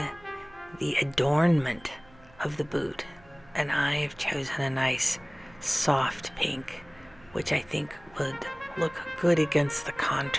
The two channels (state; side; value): noise; right; hum, 26 dB below the sound